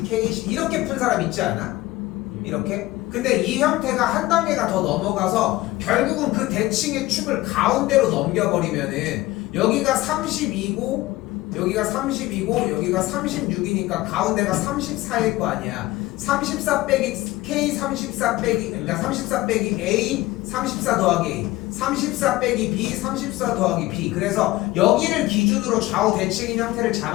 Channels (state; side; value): quieter; right; 18.4 dB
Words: K. 이렇게 푼 사람 있지 않아? 이렇게? 근데 이 형태가 한 단계가 더 넘어가서 결국은 그 대칭의 축을 가운데로 넘겨버리면은 여기가 32고 여기가 32고 여기가 36이니까 가운데가 34일 거 아니야. 34 빼기 K 34 빼기 그러니까 34 빼기 A 34 더하기 A 34 빼기 B 34 더하기 B. 그래서 여기를 기준으로 좌우 대칭인 형태를